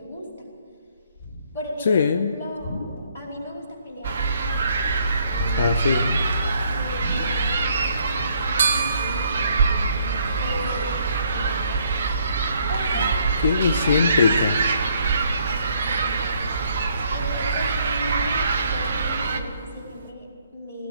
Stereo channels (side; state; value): both; inverted; correlation -0.67